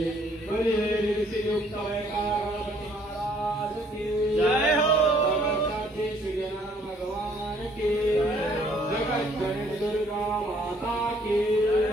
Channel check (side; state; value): both; normal; correlation 0.62